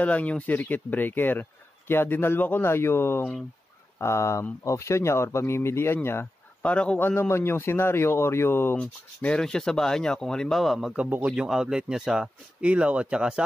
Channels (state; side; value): normal; both; correlation 0.92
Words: lang yung circuit breaker. Kaya dinalwa ko na yung option niya or pamimilian niya, para kung ano man yung scenario or yung meron siya sa bahay niya, kung halimbawa magkabukod yung outlet niya sa ilaw at saka